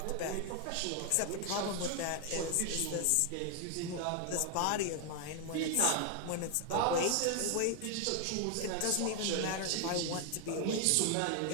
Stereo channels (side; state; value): both; different; correlation 0.00